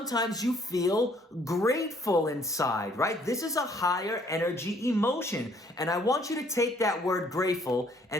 you feel grateful inside, right? This is a higher energy emotion. And I want you to take that word grateful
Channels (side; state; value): both; normal; correlation 0.63